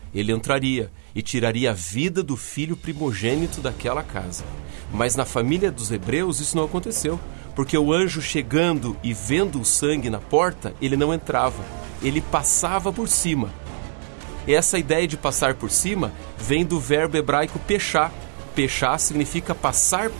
ele entraria e tiraria a vida do filho primogênito daquela casa. Mas na família dos hebreus isso não aconteceu, porque o anjo chegando e vendo o sangue na porta, ele não entrava, ele passava por cima. Essa ideia de passar por cima vem do verbo hebraico pechá. Pechá significa passar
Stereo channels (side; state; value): left; silent; 63 dB below the other